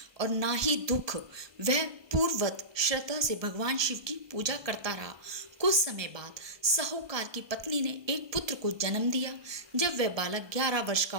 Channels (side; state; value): left; late; 1.2 ms